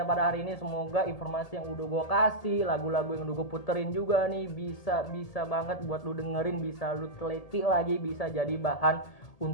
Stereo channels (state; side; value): late; right; 1.8 ms